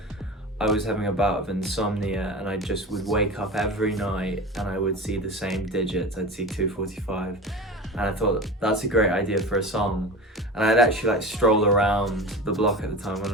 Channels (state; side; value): normal; both; correlation 0.31